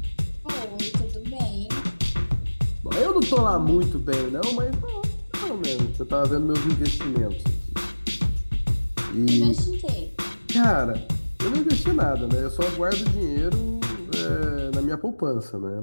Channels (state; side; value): inverted; both; correlation -1.00